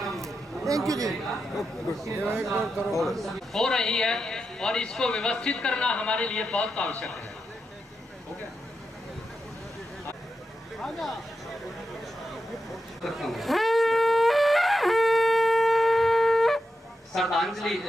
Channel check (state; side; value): normal; both; correlation 0.88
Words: थैंक यू जी। हो रही है और इसको व्यवस्थित करना हमारे लिए बहुत आवश्यक है। श्रद्धांजलि,